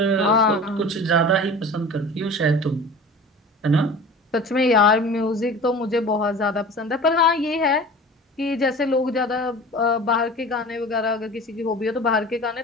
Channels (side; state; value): both; normal; correlation 0.39